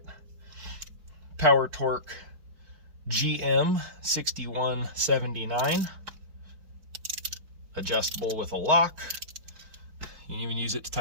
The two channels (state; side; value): late; left; 4.5 ms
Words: Power Torque GM 6179, adjustable with a lock. You can even use it to